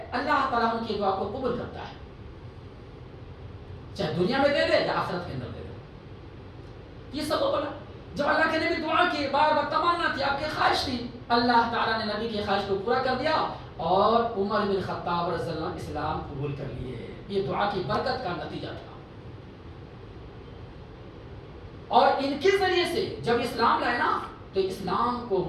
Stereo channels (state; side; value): identical; both; correlation 1.00